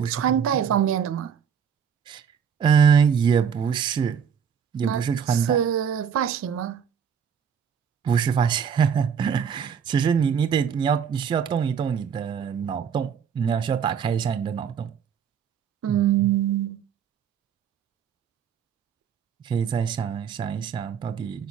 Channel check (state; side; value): quieter; left; 7.4 dB